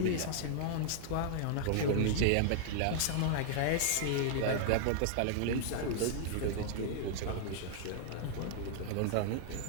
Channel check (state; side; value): different; both; correlation -0.01